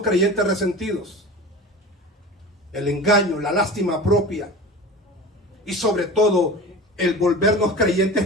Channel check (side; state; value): both; normal; correlation 0.34